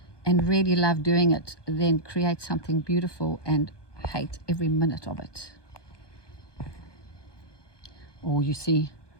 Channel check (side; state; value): right; late; 1.2 ms